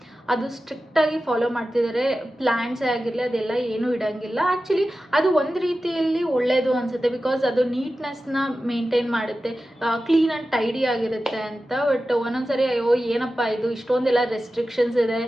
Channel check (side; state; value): both; normal; correlation 0.94